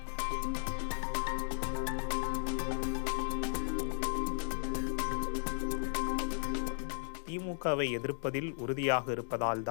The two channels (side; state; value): right; silent; digital silence